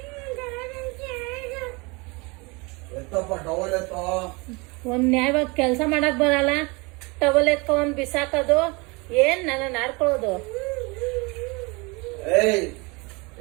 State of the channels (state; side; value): quieter; left; 27.5 dB